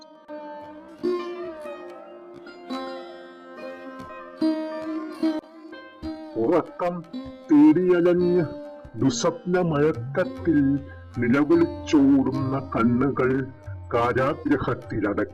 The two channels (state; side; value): identical; both; correlation 1.00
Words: ഉറക്കം തേടിയലഞ്ഞ് ദുസ്വപ്നമയക്കത്തിൽ നിലവിളിച്ചോടുന്ന കണ്ണുകൾ